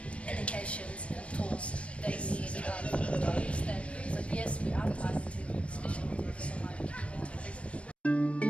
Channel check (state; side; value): late; right; 0.061 ms